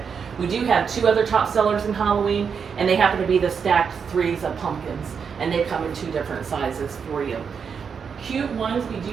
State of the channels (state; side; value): quieter; left; 6.4 dB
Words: We do have 2 other top sellers in Halloween, and they happen to be the stacked 3s of pumpkins, and they come in 2 different sizes for you. Cute ones, we